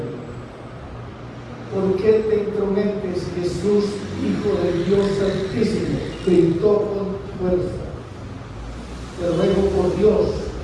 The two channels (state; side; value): identical; both; correlation 1.00